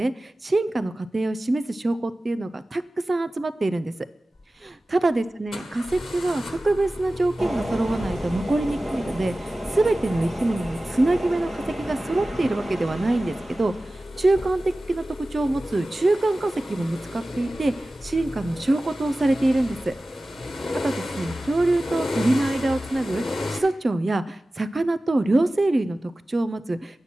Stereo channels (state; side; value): normal; both; correlation 0.96